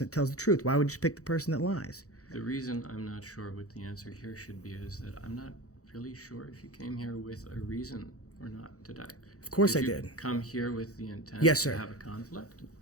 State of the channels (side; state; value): right; late; 0.66 ms